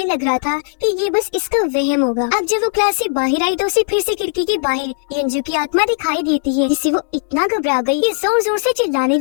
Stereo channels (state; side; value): silent; right; digital silence